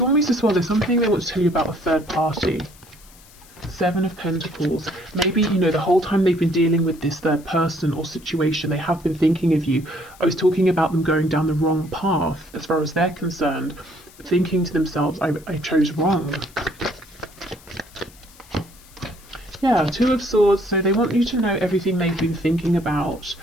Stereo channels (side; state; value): left; noise; hiss, 24 dB below the sound